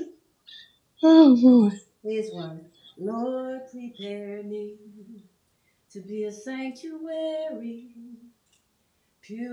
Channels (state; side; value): identical; both; correlation 1.00